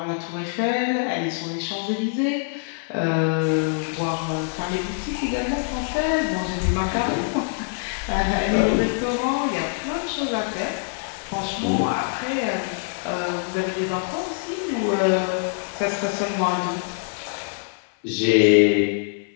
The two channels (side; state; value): right; silent; 62 dB below the other